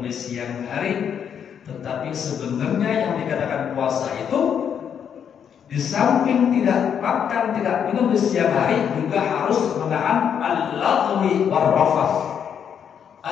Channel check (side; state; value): right; quieter; 8.1 dB